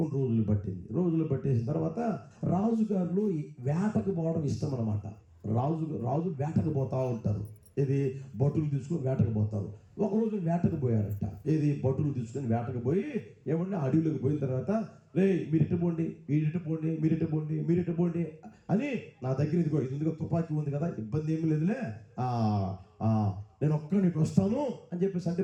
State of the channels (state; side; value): identical; both; correlation 1.00